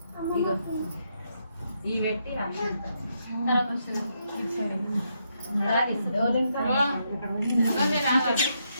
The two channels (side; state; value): both; inverted; correlation -0.79